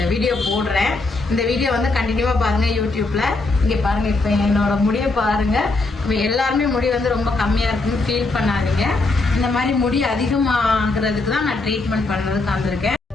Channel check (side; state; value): right; quieter; 3.4 dB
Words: வீடியோ போடுறேன். இந்த வீடியோ வந்து கண்டினியூவா பாருங்க யூடியூப்ல. இங்க பாருங்க இப்ப என்னோட முடியை பாருங்க. எல்லாருமே முடி வந்து ரொம்ப கம்மியா இருக்குன்னு ஃபீல் பண்ணாதீங்க. இந்த மாதிரி முடி அதிகமாகிறதுக்கு தான் நான் ட்ரீட்மெண்ட் பண்றதுக்கு வந்திருக்கேன்.